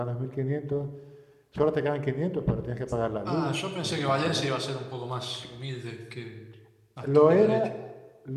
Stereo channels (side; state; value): both; identical; correlation 1.00